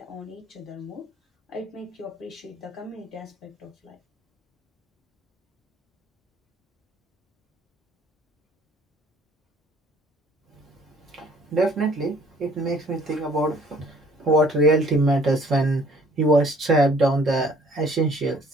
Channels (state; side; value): normal; both; correlation 0.57